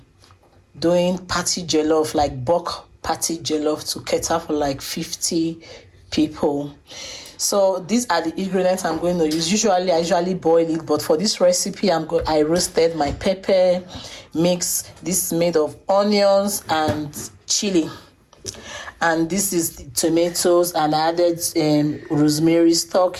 doing party jellof, like bulk party jellof to cater for like 50 people. So these are the ingredients I'm going to use. I usually boil it, but for this recipe, I roasted my pepper mix. This is made of onions and chili, and this is the tomatoes, and I added rosemary stock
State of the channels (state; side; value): identical; both; correlation 1.00